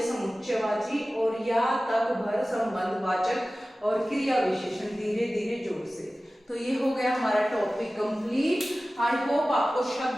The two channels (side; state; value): both; normal; correlation 0.96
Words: समुच्चयवाची, और या तक भर संबंधवाचक, और क्रिया विशेषण धीरे धीरे जोर से। तो ये हो गया हमारा टॉपिक कंप्लीट। आई होप आपको